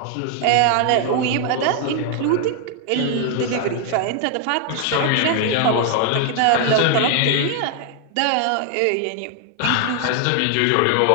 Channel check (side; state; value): both; different; correlation 0.00